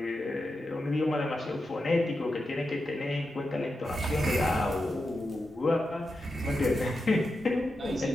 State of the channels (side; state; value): both; normal; correlation 0.89